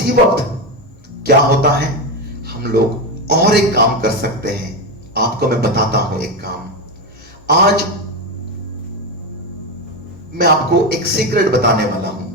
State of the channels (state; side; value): normal; both; correlation 0.12